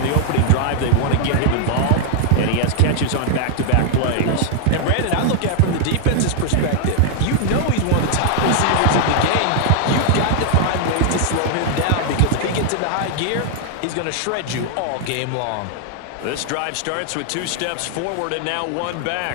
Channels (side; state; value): both; different; correlation 0.00